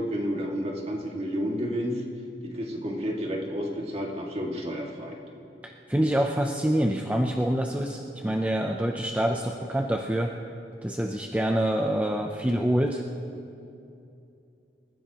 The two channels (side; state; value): both; normal; correlation 0.86